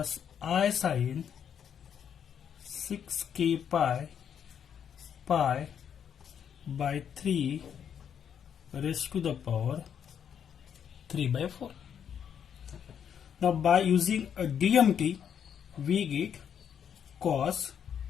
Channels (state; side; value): quieter; right; 8.3 dB